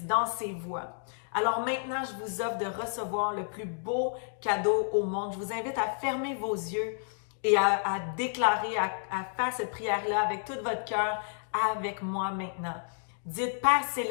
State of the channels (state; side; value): silent; right; digital silence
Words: dans ses voies. Alors maintenant, je vous offre de recevoir le plus beau cadeau au monde. Je vous invite à fermer vos yeux et à déclarer, à faire cette prière-là avec tout votre cœur avec moi maintenant. Dites, Père